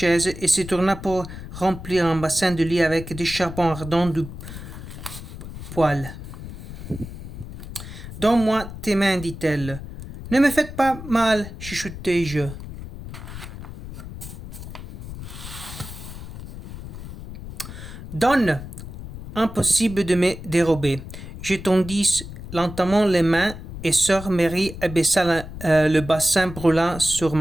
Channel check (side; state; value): left; noise; rumble, 11 dB below the sound